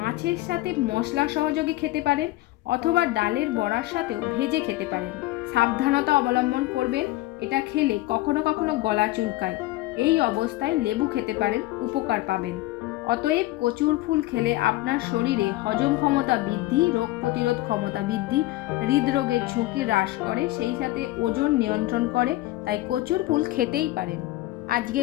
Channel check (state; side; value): quieter; right; 17.8 dB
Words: সাথে মশলা সহযোগে খেতে পারেন অথবা ডালের বড়ার সাথেও ভেজে খেতে পারেন। সাবধানতা অবলম্বন করবেন, এটা খেলে কখনো কখনো গলা চুলকায়। এই অবস্থায় লেবু খেতে পারেন, উপকার পাবেন। অতএব কচুর ফুল খেলে আপনার শরীরে হজম ক্ষমতা বৃদ্ধি, রোগ প্রতিরোধ ক্ষমতা বৃদ্ধি, হৃদরোগের ঝুঁকি হ্রাস করে, সেই সাথে ওজন নিয়ন্ত্রণ করে। তাই কচুর ফুল খেতেই পারেন।